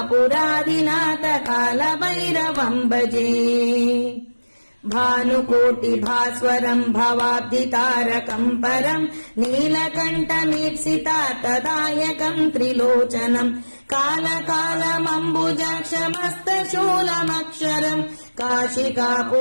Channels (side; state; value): both; inverted; correlation -1.00